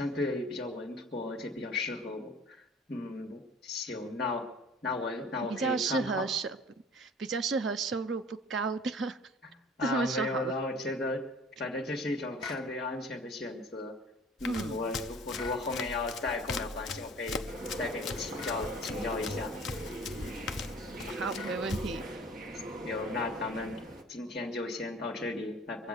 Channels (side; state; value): both; normal; correlation 0.46